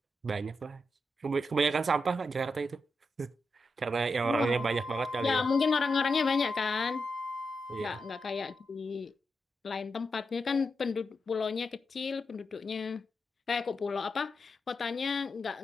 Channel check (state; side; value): normal; both; correlation 0.86